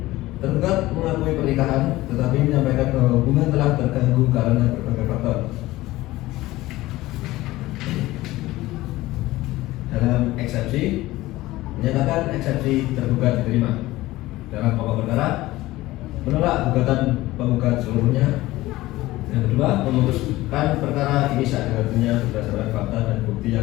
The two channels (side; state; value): right; quieter; 17.7 dB